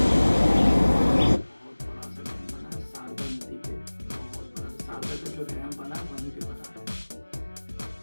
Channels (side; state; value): both; inverted; correlation -1.00